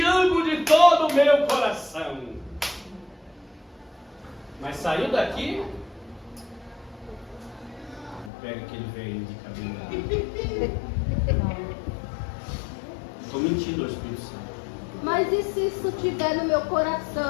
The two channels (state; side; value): drops out; right; at 8.3 s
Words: amo de todo o meu coração. Mas saiu daqui, pega aquele velho de cabelo. Estou mentindo ao Espírito Santo. Mas e se isso estiver no meu